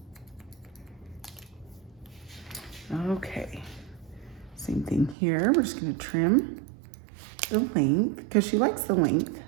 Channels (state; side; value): drops out; left; at 5.2 s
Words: Okay, same thing here. We're just gonna trim the length because she likes the length.